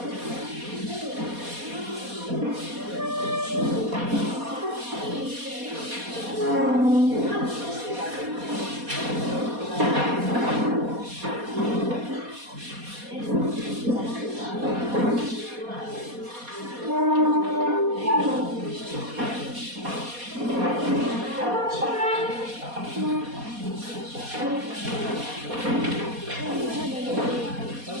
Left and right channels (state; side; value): late; left; 4.2 ms